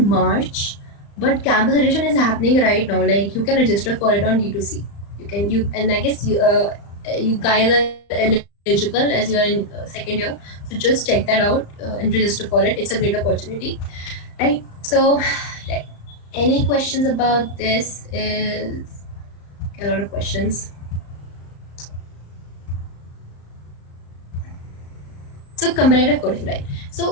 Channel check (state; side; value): late; right; 35 ms